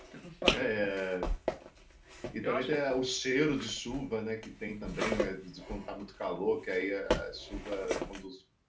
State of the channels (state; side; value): identical; both; correlation 1.00